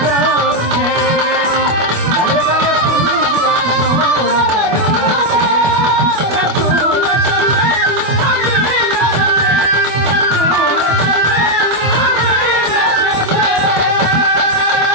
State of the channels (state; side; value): late; left; 25 ms